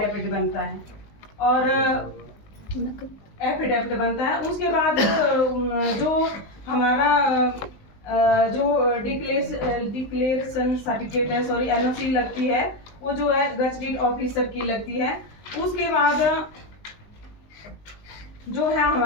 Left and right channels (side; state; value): right; late; 19 ms